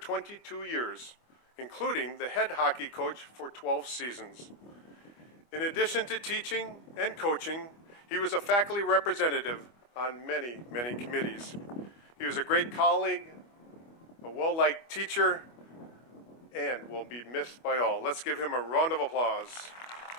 years, including the head hockey coach for 12 seasons. In addition to teaching and coaching, he was a faculty representative on many committees. He was a great colleague, a well-liked teacher, and will be missed by all. Let's give him a round of applause.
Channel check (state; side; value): late; right; 25 ms